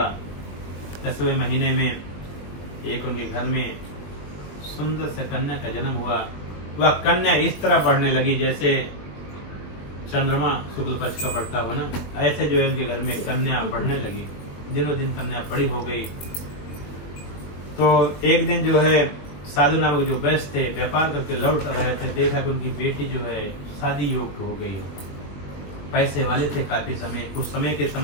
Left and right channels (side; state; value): right; late; 21 ms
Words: 10वें महीने में एक उनके घर में सुंदर से कन्या का जन्म हुआ। वह कन्या इस तरह बढ़ने लगी जैसे चंद्रमा शुक्ल पक्ष का बढ़ता हो ना, ऐसे जो इनके घर में कन्या बढ़ने लगी। दिनों दिन कन्या बड़ी हो गई। तो एक दिन जो है साधु नामक जो वैश्य थे व्यापार करके लौट रहे थे, देखा कि उनकी बेटी जो है शादी योग्य हो गई, पैसे वाले थे काफी समय, उस समय के